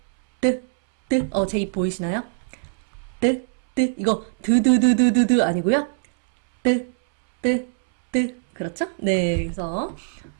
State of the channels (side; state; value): left; silent; 64 dB below the other